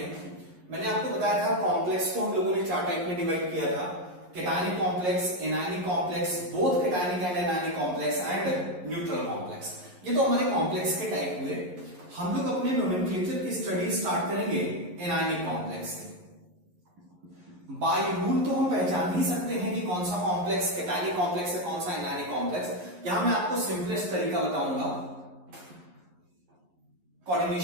मैंने आपको बताया था कॉम्प्लेक्स को हम लोगों ने 4 टाइप में डिवाइड किया था, cationic complex, anionic complex, both cationic and anionic complex and neutral complex. ये तो हमारे कॉम्प्लेक्स के टाइप हुए। हम लोग अपने नोमेनक्लेचर की स्टडी स्टार्ट करेंगे एनायनिक कॉम्प्लेक्स से। बाय रूल तो हम पहचान ही सकते हैं कि कौन सा कॉम्प्लेक्स केटायनिक कॉम्प्लेक्स है, कौन सा एनायनिक कॉम्प्लेक्स। यहां मैं आपको सिंपलेस्ट तरीका बताऊंगा।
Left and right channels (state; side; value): late; left; 11 ms